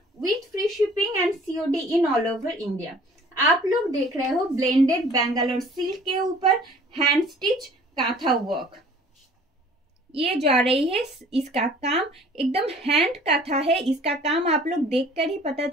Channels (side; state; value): both; normal; correlation 0.51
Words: with free shipping and COD in all over India. आप लोग देख रहे हो ब्लेंडेड बेंगलोर सिल्क के ऊपर हैंड स्टिच कांथा वर्क। ये जा रही है, इसका काम एकदम हैंड कांथा है। इसका काम आप लोग देखकर ही पता